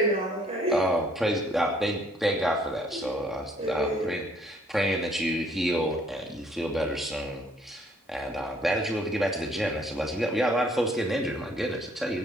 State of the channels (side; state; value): both; normal; correlation 0.62